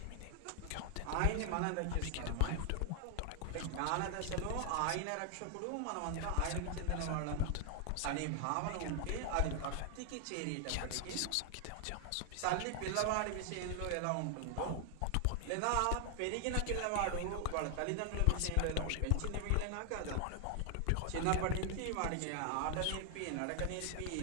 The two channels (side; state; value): both; different; correlation 0.00